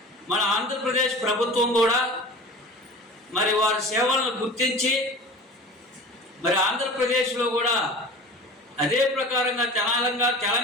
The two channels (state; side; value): normal; both; correlation 0.37